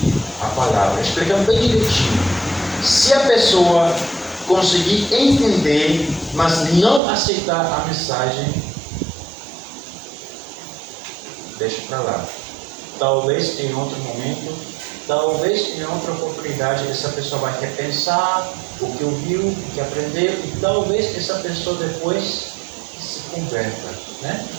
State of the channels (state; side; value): drops out; left; at 7.0 s